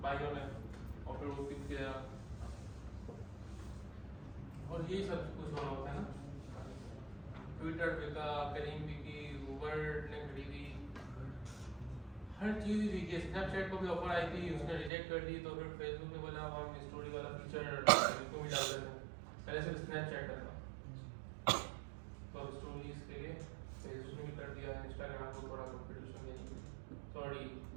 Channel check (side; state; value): left; drops out; at 14.9 s